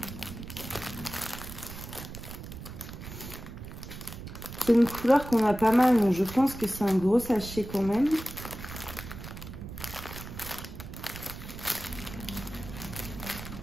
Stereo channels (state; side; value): noise; right; rumble, 11 dB below the sound